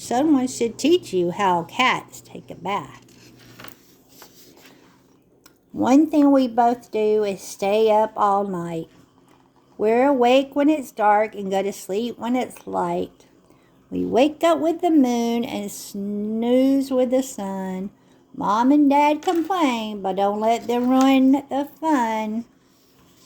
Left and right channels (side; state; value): both; identical; correlation 1.00